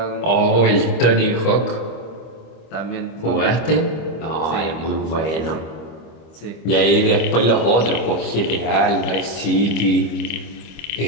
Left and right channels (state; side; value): late; right; 25 ms